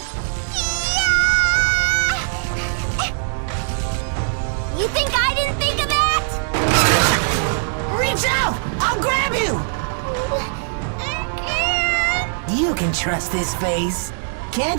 You think I didn't think of that? Reach out! I'll grab you! You can trust this face,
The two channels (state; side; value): silent; left; digital silence